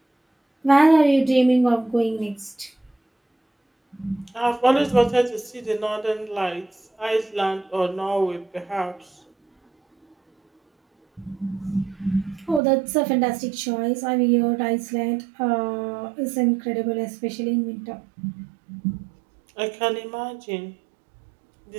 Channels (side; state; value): left; drops out; at 12.6 s